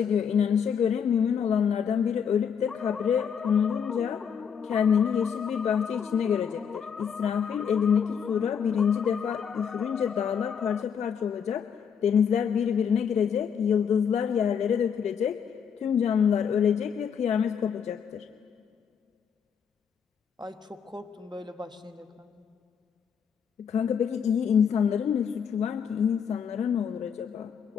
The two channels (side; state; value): right; quieter; 7.3 dB